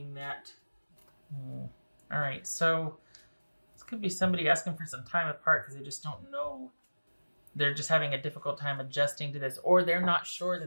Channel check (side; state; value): both; inverted; correlation -1.00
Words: that. All right, so this could be somebody asking for some time apart because they just don't know. They're just having a difficult time adjusting to this, or they're not sure